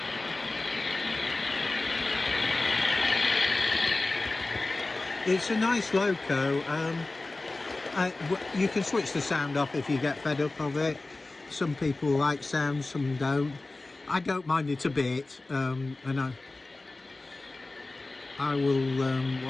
it's a nice loco. You can switch the sound off if you get fed up of it. Some people like sound, some don't. I don't mind it a bit, and I will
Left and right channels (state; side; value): quieter; right; 3.2 dB